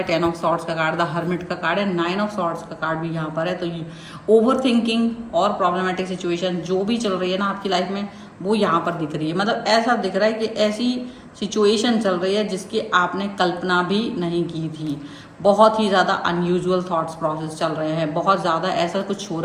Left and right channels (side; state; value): both; identical; correlation 1.00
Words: 10 ऑफ सॉर्ड्स का कार्ड, द हर्मिट का कार्ड है, 9 ऑफ सॉर्ड्स का कार्ड भी यहाँ पर है। तो ओवर थिंकिंग और प्रॉब्लमेटिक सिचुएशन जो भी चल रही है ना आपकी लाइफ में, वो यहाँ पर दिख रही है। मतलब ऐसा दिख रहा है कि ऐसी सिचुएशन चल रही है जिसकी आपने कल्पना भी नहीं की थी। बहुत ही ज़्यादा अनयूजुअल थॉट्स प्रोसेस चल रहे हैं, बहुत ज़्यादा ऐसा कुछ हो